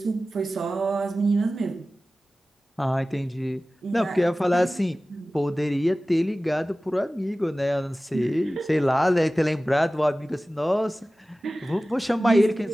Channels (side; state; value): both; normal; correlation 0.96